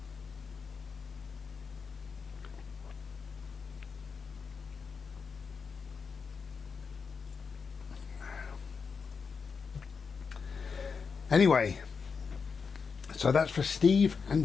Anyway, so that's for Steve and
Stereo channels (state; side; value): quieter; right; 5.4 dB